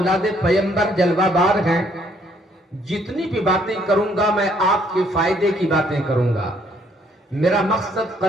پیمبر جلوہ بار ہیں. جتنی بھی باتیں کروں گا میں آپ کے فائدے کی باتیں کروں گا. میرا مقصد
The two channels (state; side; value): normal; both; correlation 0.66